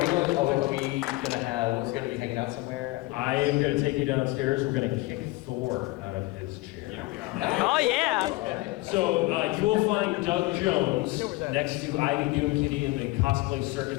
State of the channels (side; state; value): right; quieter; 20.7 dB